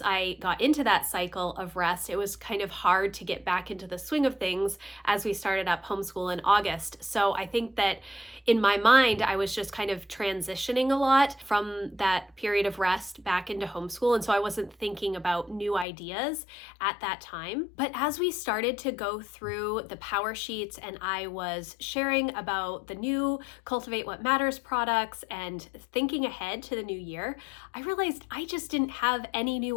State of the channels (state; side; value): drops out; right; at 15.9 s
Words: I got into that cycle of rest, it was kind of hard to get back into the swing of things as we started up homeschool in August. So I think that in my mind, I was just kind of transitioning a lot from that period of rest back into homeschool. And so I wasn't thinking about new ideas at that time. But as we started to go through the power sheet and I was sharing about the new Cultivate What Matters products and thinking ahead to the new year, I realized I just didn't have any